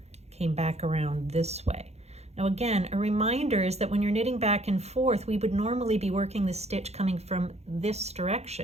came back around this way. Now again, a reminder is that when you're knitting back and forth, we would normally be working the stitch coming from this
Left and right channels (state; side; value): late; left; 0.31 ms